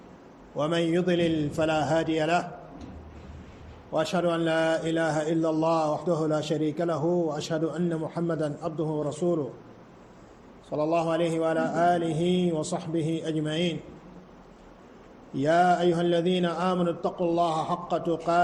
ومن يضلل فلا هادي له، وأشهد أن لا إله إلا الله وحده لا شريك له، وأشهد أن محمدا عبده ورسوله صلى الله عليه وعلى آله وصحبه أجمعين. يا أيها الذين آمنوا اتقوا الله حق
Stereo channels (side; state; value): both; identical; correlation 1.00